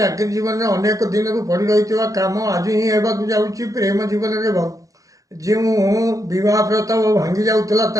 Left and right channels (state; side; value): late; left; 0.17 ms